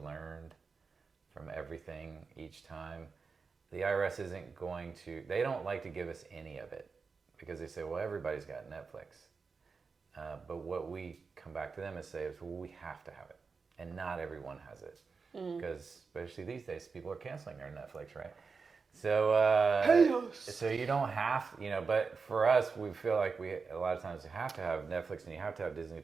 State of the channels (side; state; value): left; quieter; 4.9 dB